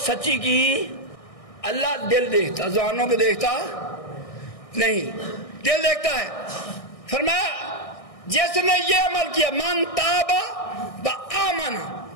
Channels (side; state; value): right; late; 1.6 ms